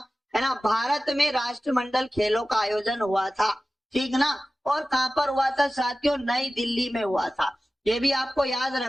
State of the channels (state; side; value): normal; both; correlation 0.96